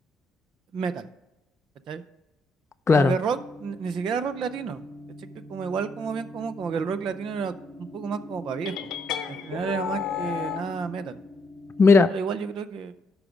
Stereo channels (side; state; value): both; normal; correlation 0.74